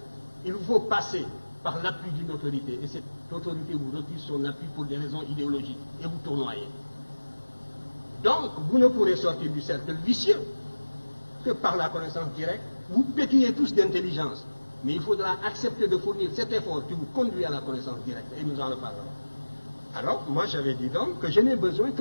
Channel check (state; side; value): inverted; both; correlation -1.00